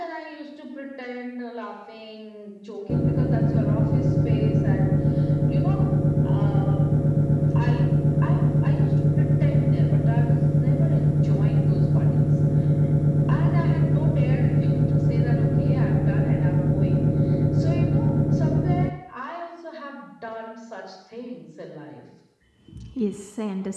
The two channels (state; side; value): identical; both; correlation 1.00